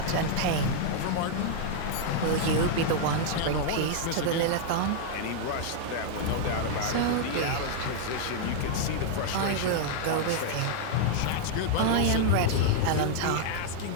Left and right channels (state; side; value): different; both; correlation -0.01